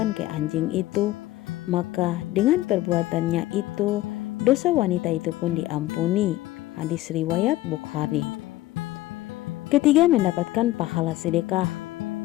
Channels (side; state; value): right; quieter; 16.4 dB